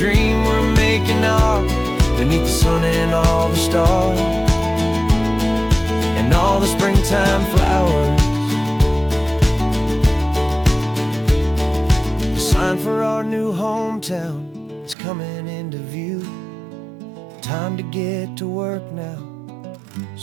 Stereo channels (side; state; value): left; drops out; at 15.0 s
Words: we're making ours, beneath the sun and all the stars and all the springtime flowers. The sign for our new hometown is coming into view. Time to get to work now,